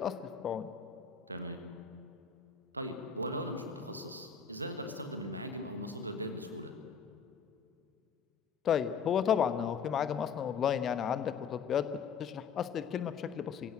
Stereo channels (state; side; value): quieter; right; 6.5 dB